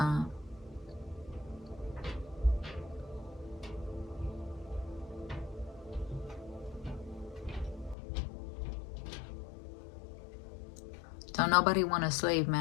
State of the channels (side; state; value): right; drops out; at 8.0 s